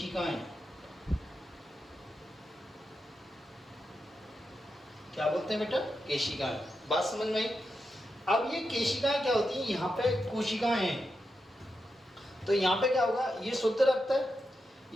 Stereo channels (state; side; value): normal; both; correlation 0.87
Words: क्या बोलते हैं बेटा? केशिकाएं। बात समझ में आई? अब ये केशिकाएं क्या होती हैं? यहाँ पे कोशिकाएं हैं, तो यहाँ पे क्या होगा? ये शुद्ध रक्त है।